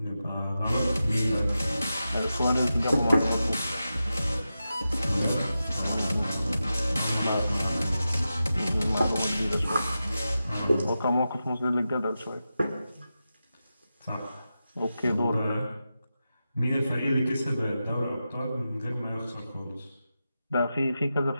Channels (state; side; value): inverted; both; correlation -0.91